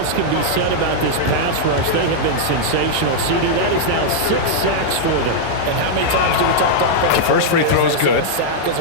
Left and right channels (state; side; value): different; both; correlation -0.02